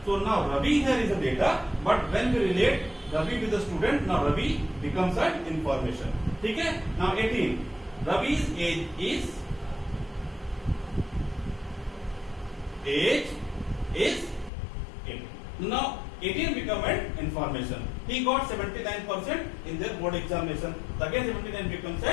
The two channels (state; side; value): drops out; right; at 14.5 s